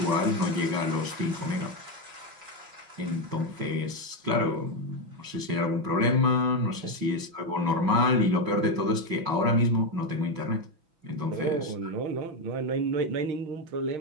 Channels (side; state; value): left; late; 6.0 ms